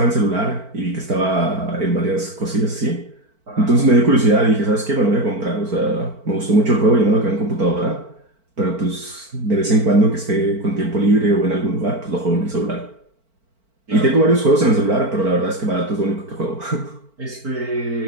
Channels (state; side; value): late; left; 4.5 ms